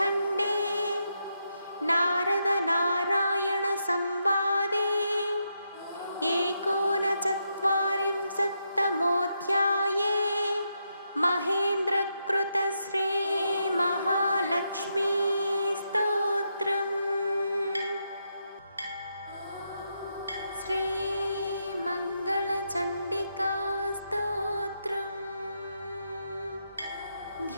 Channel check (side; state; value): both; inverted; correlation -0.82